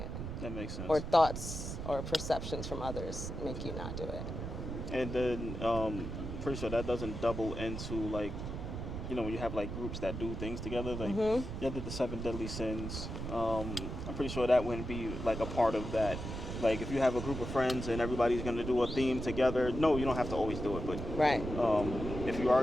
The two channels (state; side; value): noise; right; rumble, 6 dB below the sound